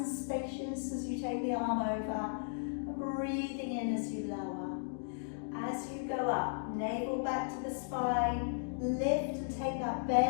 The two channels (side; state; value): right; silent; digital silence